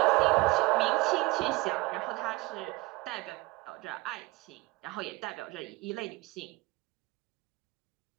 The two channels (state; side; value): quieter; left; 22.4 dB